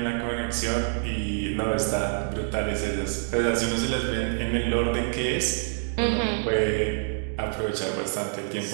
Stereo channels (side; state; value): left; silent; digital silence